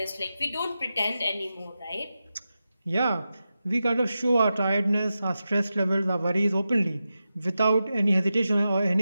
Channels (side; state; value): both; inverted; correlation -0.91